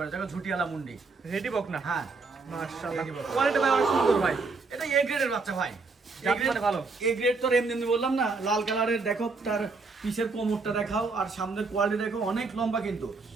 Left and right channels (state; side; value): quieter; left; 4.1 dB